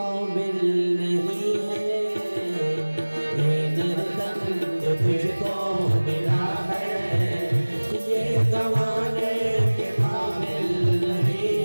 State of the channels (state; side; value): inverted; both; correlation -1.00